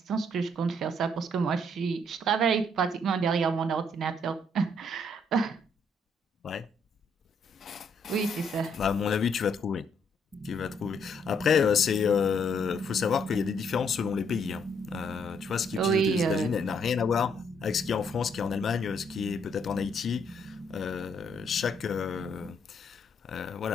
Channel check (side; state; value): both; normal; correlation 0.71